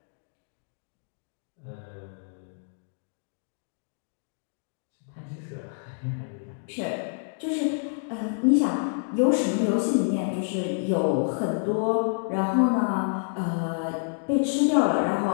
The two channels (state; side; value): silent; right; digital silence